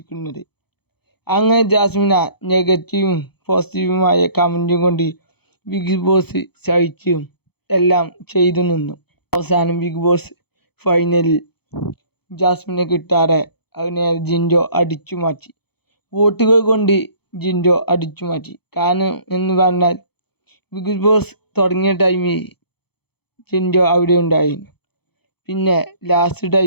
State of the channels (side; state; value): right; late; 0.97 ms